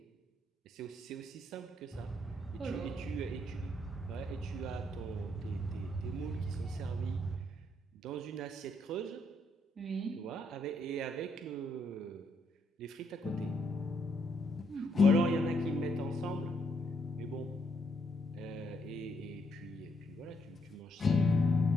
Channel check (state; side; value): normal; both; correlation 0.75